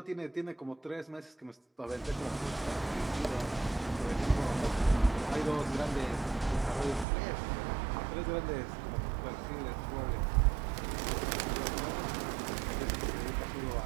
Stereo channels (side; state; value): left; drops out; at 7.1 s